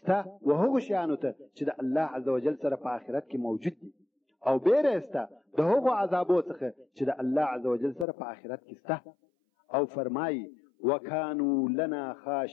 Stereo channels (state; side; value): drops out; right; at 8.1 s